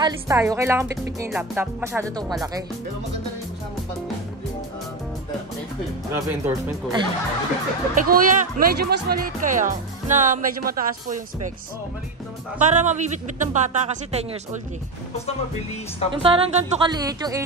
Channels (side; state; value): left; quieter; 3.2 dB